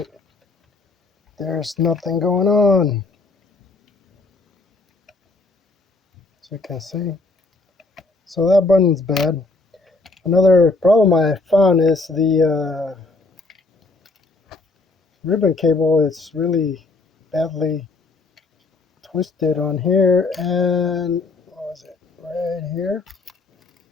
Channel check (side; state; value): right; quieter; 3.4 dB